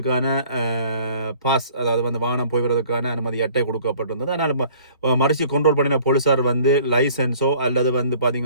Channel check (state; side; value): inverted; both; correlation -0.53